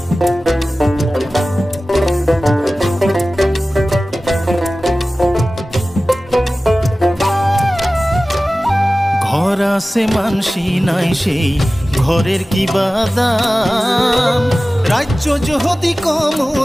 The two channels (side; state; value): both; normal; correlation 0.96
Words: ঘর আছে মানসি নাই সেই ঘরের কি বাদাম, রাজ্য যদি